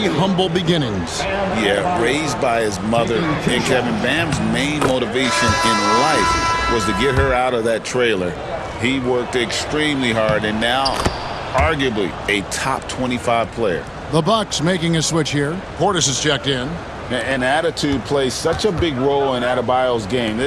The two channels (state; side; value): identical; both; correlation 1.00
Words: humble beginnings. Yeah, raised by his mother. And Kevin, Bam's main motivation in life was to get her out of that trailer. He worked extremely hard and now arguably a top 25 player. The Bucks making a switch here. Portis is checked in. And attitude plays such a big role in Adebayo's game.